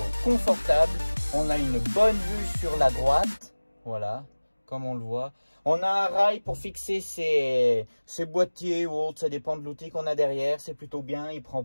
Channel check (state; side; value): inverted; both; correlation -1.00